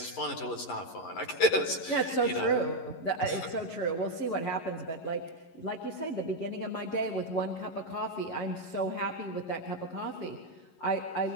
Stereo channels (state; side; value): late; right; 11 ms